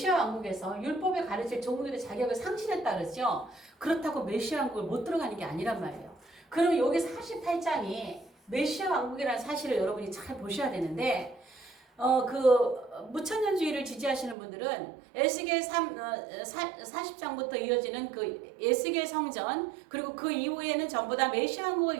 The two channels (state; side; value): drops out; left; at 14.4 s